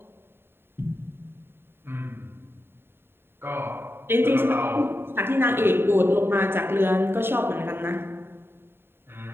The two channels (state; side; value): late; left; 0.11 ms